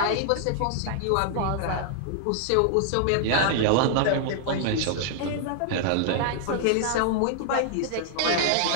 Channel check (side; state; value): both; different; correlation -0.01